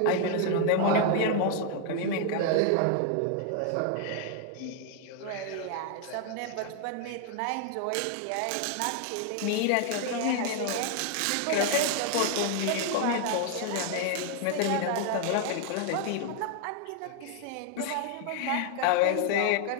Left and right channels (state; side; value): different; both; correlation 0.00